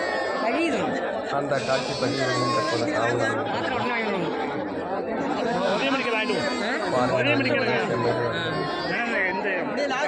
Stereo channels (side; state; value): both; identical; correlation 1.00